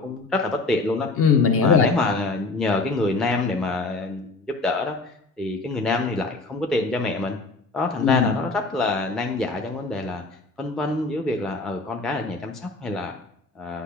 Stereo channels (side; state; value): right; quieter; 3.5 dB